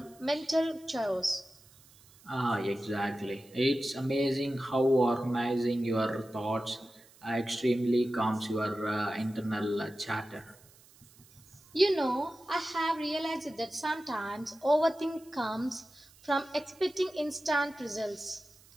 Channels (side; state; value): right; noise; hiss, 26 dB below the sound